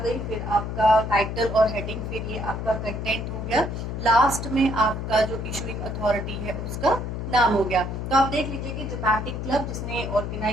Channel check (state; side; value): noise; left; hum, 4 dB below the sound